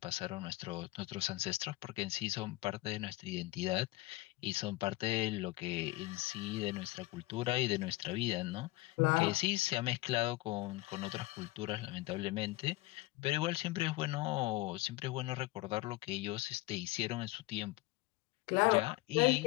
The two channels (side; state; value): right; quieter; 19.9 dB